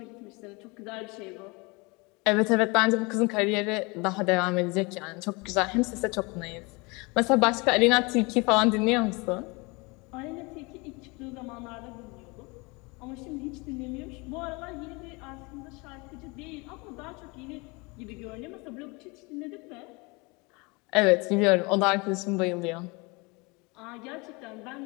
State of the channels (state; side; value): quieter; right; 27.4 dB